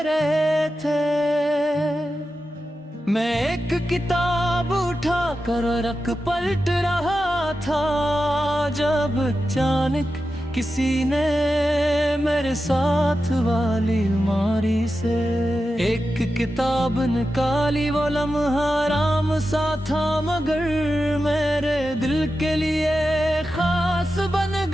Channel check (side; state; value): both; normal; correlation 0.91